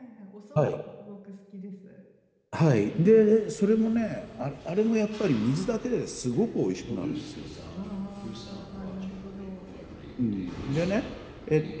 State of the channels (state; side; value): identical; both; correlation 1.00